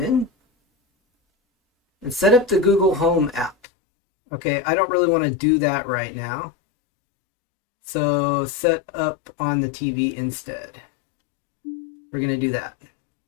in. And set up the Google Home app. Okay, I don't really want to do that right now. So set up on the TV instead. We're going to do that.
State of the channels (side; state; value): right; drops out; at 3.6 s